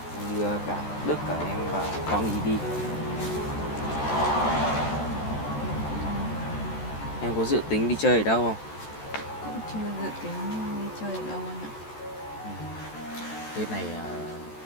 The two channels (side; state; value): right; late; 14 ms